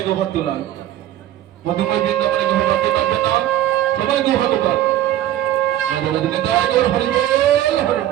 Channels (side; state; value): left; quieter; 12.7 dB